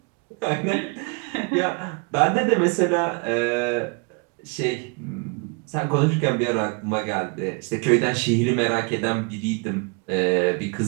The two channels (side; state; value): left; quieter; 32.9 dB